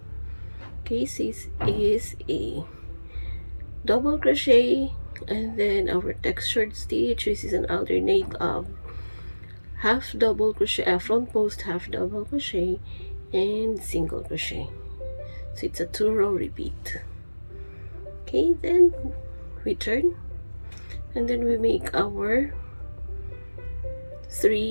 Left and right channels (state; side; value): inverted; both; correlation -1.00